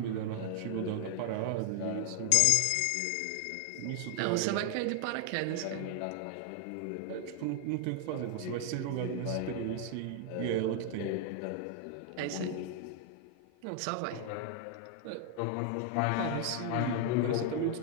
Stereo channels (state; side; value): different; both; correlation 0.00